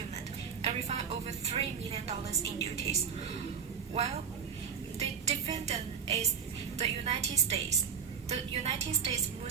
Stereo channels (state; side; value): quieter; left; 7.0 dB